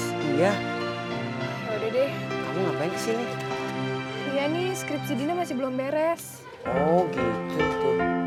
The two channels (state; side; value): identical; both; correlation 1.00